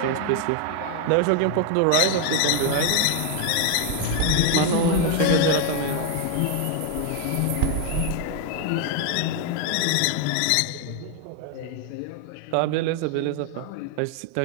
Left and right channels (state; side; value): different; both; correlation 0.00